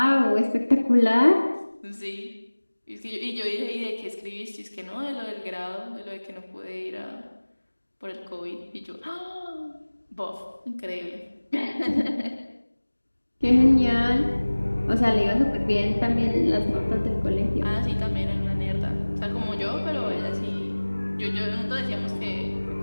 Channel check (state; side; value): inverted; both; correlation -1.00